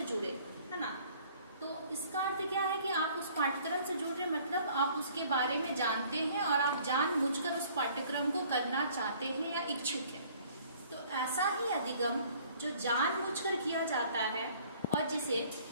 जुड़े, है ना। तो इसका अर्थ क्या है कि आप उस पाठ्यक्रम से जुड़ रहे, मतलब आप उसके बारे में जानते हैं और आप जानबूझकर उस पाठ्यक्रम को करना चाहते हैं या इच्छुक हैं। तो ऐसा ही अधिगम जो जानबूझकर किया जाता है और जिसे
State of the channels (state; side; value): inverted; both; correlation -0.56